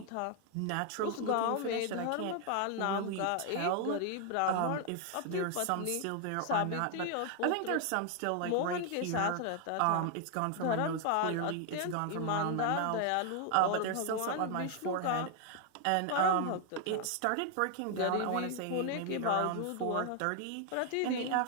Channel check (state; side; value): different; both; correlation 0.00